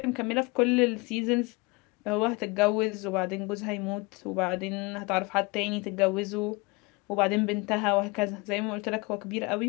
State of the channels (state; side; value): quieter; right; 26.3 dB